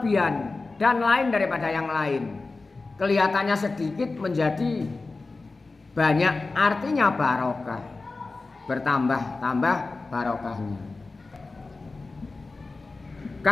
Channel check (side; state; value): right; quieter; 3.7 dB